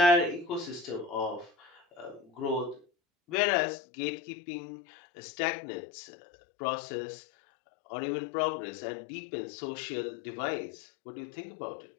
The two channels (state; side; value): drops out; right; at 3.4 s